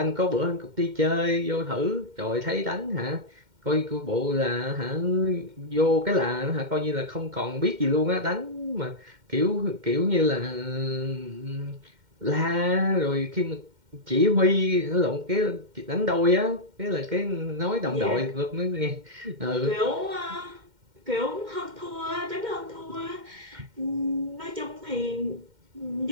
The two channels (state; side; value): late; left; 2.1 ms